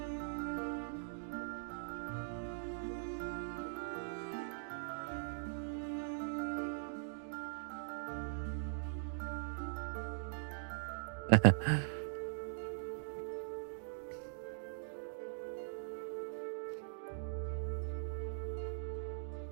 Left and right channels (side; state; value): left; silent; digital silence